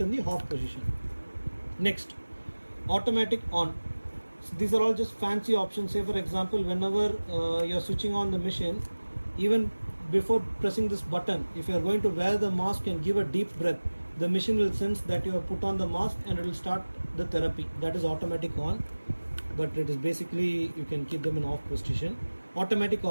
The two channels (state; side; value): inverted; both; correlation -1.00